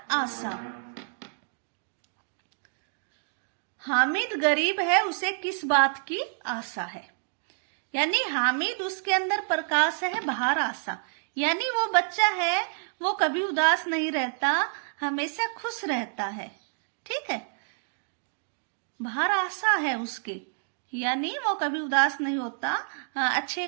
आशा। हामिद गरीब है, उसे किस बात की आशा है? यानी हामिद, उसके अंदर प्रकाश है, बाहर आशा। यानी वो बच्चा है, वो कभी उदास नहीं रहता, हमेशा खुश रहता है। ठीक है, बाहर आशा है उसके, यानी वो कभी उदास नहीं होता, अच्छे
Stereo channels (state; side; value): silent; left; digital silence